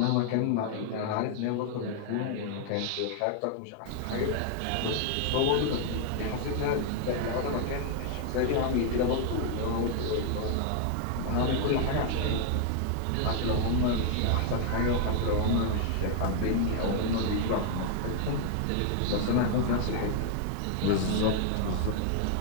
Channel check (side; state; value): both; different; correlation 0.00